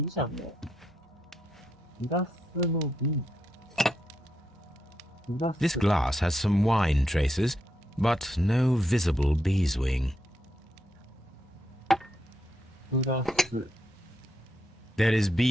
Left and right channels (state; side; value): normal; both; correlation 0.81